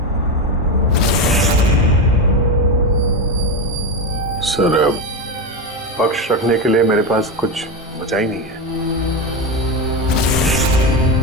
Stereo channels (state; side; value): normal; both; correlation 0.14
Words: सर, पक्ष रखने के लिए मेरे पास कुछ बचा ही नहीं है।